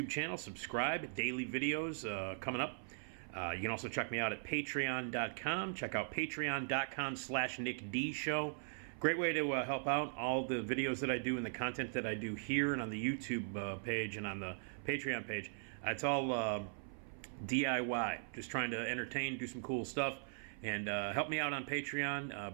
channel. Subscribe. Daily videos coming up. You can also check me out at patreon.com. Check out patreon.com/NickDShow. Great way to help out all the videos that I do and the content that I do here and on the YouTube page and on the Patreon page. It's all DIY. Just trying to entertain, do some cool stuff. And help me out on Patreon.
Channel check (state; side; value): silent; left; 51 dB below the other